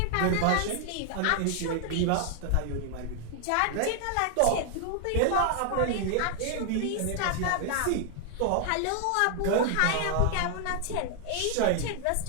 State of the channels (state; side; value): different; both; correlation 0.00